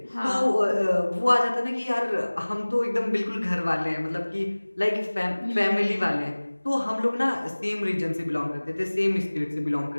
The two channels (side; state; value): both; inverted; correlation -1.00